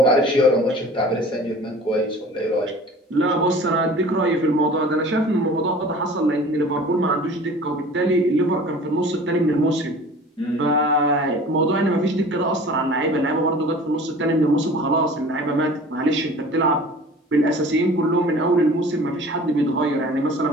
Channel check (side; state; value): both; normal; correlation 0.44